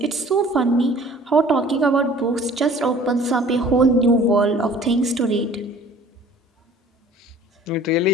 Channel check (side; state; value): both; normal; correlation 0.50